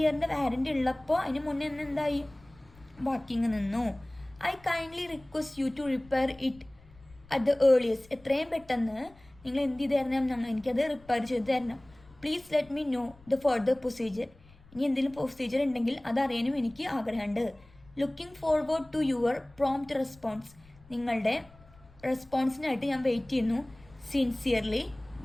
വാറണ്ടി ഉള്ളപ്പോൾ അതിന് മുന്നേ എന്തായി? വർക്കിംഗ് നിന്നു. I kindly request you to repair it at the earliest. എത്രയും പെട്ടെന്ന് നിങ്ങൾ എന്ത് ചെയ്ത് തരണം? എനിക്കത് റിപ്പയർ ചെയ്ത് തരണം. Please let me know the further procedure. ഇനി എന്തെങ്കിലും പ്രൊസീജിയർ ഉണ്ടെങ്കിൽ അതറിയാനും എനിക്ക് ആഗ്രഹമുണ്ട്. Looking forward to your prompt response. നിങ്ങളുടെ റെസ്പോൺസിനായിട്ട് ഞാൻ വെയിറ്റ് ചെയ്യുന്നു. സിൻസിയർലി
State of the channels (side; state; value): left; noise; rumble, 26 dB below the sound